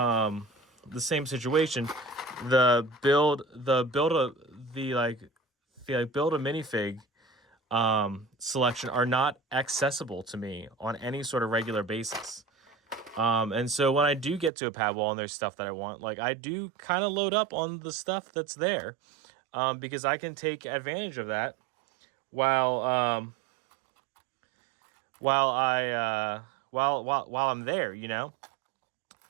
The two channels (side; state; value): left; drops out; at 14.5 s